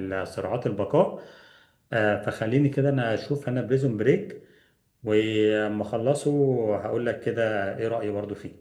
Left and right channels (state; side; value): identical; both; correlation 1.00